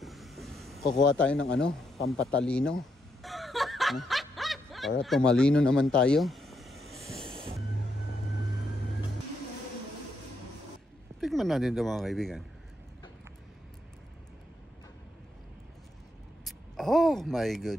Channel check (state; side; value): normal; both; correlation 0.79